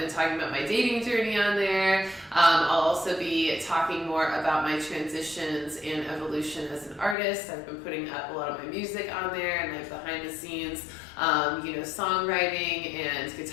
talking about my dating journey on there. I'll also be talking more about my transitions and evolution as an artist. I've been putting up a lot of my music on there and like behind the scenes, songwriting and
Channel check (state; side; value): drops out; right; at 7.2 s